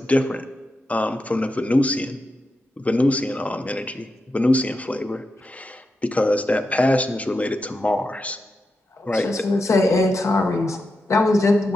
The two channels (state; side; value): normal; both; correlation 0.88